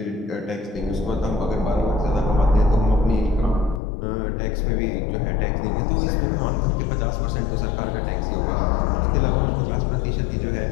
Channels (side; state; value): right; drops out; at 3.8 s